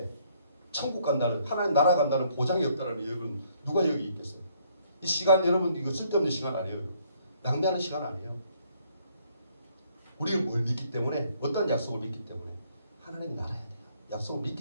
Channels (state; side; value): inverted; both; correlation -0.66